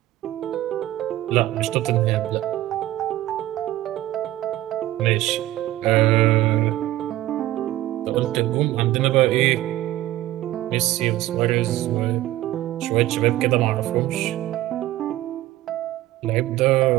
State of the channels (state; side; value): quieter; left; 15.3 dB